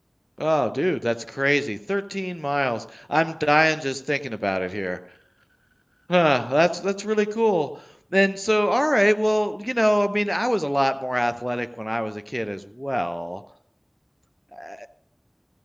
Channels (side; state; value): both; identical; correlation 1.00